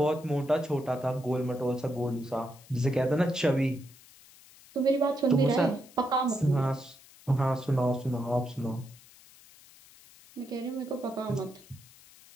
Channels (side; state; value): left; noise; hiss, 24 dB below the sound